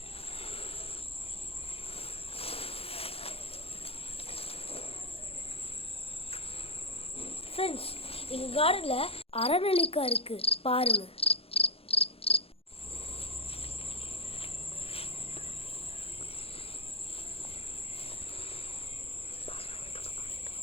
ஃப்ரெண்ட்ஸ், எங்கள் கார்டனில் அரநெல்லிக்காய் இருக்குது, பாருங்கள்.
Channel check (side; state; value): right; late; 0.28 ms